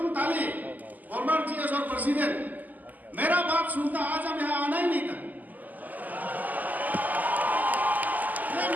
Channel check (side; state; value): left; late; 0.082 ms